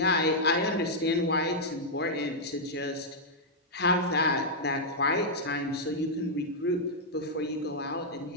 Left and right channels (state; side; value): normal; both; correlation -0.06